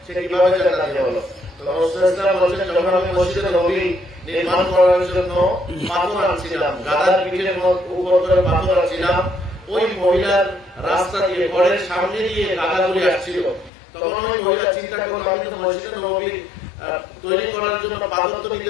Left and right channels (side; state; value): right; drops out; at 13.7 s